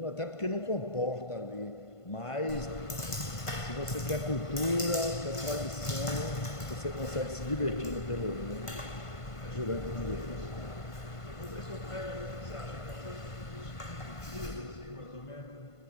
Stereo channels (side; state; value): right; late; 1.5 ms